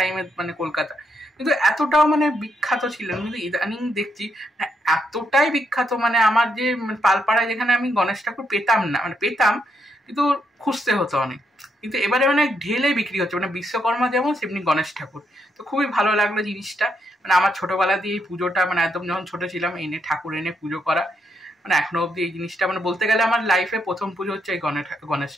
মানে কলকাতা, কিন্তু এতটাও মানে বিখ্যাত ছিল না। কিন্তু ইদানিং দেখছি এতটাই বিখ্যাত, মানে আমার যে পালপাড়ায় যেখানে আমি গণেশ ঠাকুর পেতাম না, মানে পেতাম কিন্তু খুঁজতে হতো অনেক, কিন্তু এবারে মানে ঢেলে বিক্রি হচ্ছে, মানে বিশ্বকর্মা যেমন সেমনি গণেশ ঠাকুর। তো খুবই ভালো লাগলো জিনিসটা। মানে আমার ছোটোবেলা দিয়ে এই পুজোটা, মানে একদম যখন ছোটো ছিলাম এনে ঠাকুর এনে পুজো করা, মানে এখনো অবধি এই জিনিসটা মানে বলতে গেলে আমার লাইফে প্রথম পুজো হচ্ছে এই গণেশ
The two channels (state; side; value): normal; both; correlation 0.78